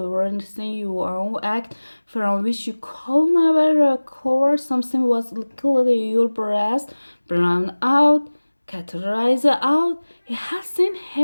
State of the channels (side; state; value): both; inverted; correlation -1.00